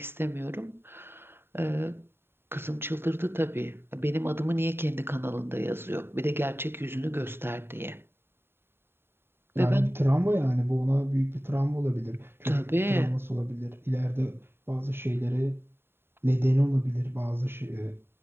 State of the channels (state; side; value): late; left; 0.11 ms